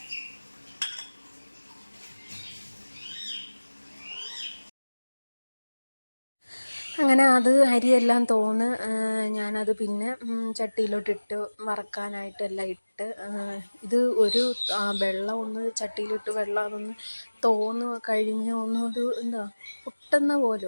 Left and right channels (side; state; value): both; inverted; correlation -1.00